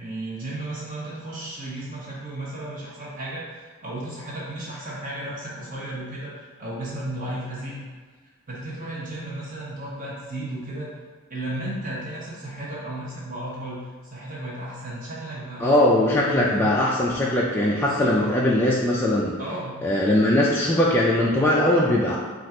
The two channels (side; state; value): both; normal; correlation 0.46